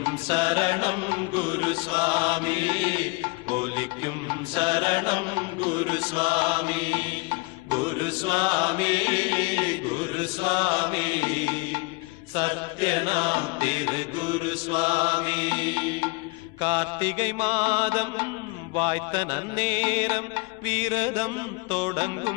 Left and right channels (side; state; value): right; quieter; 27.6 dB